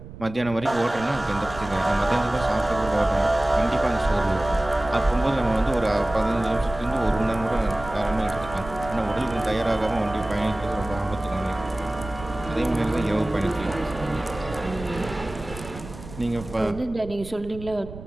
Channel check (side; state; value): right; noise; rumble, 14 dB below the sound